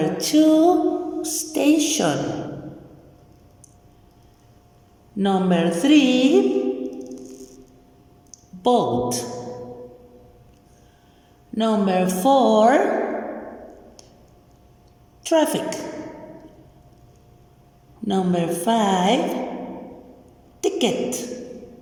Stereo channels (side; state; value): both; identical; correlation 1.00